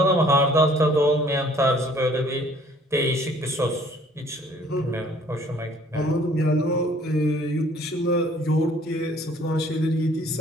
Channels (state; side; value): normal; both; correlation 0.57